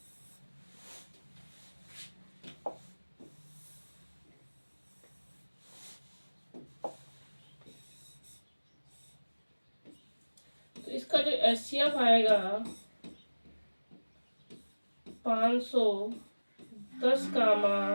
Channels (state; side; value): inverted; both; correlation -1.00